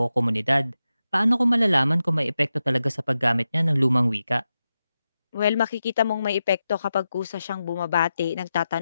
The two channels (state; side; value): inverted; both; correlation -0.90